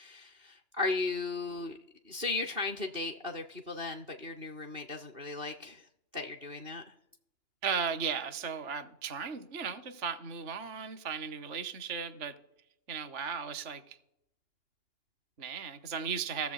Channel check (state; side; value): late; left; 2.9 ms